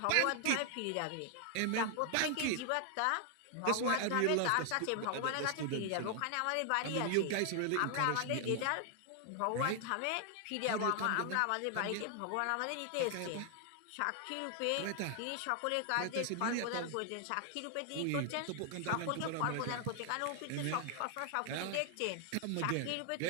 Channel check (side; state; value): both; different; correlation 0.00